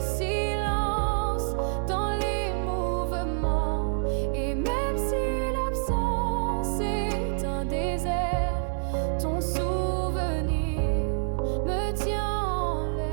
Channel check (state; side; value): silent; left; 56 dB below the other